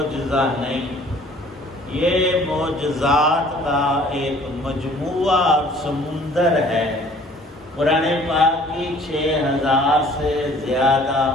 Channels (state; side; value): normal; both; correlation 0.54